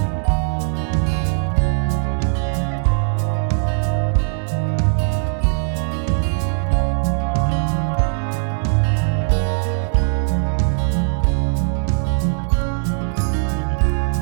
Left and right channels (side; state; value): left; silent; 66 dB below the other